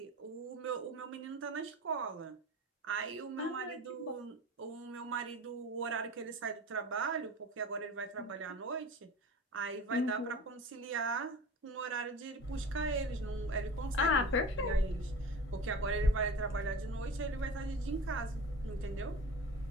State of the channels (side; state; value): both; normal; correlation 0.35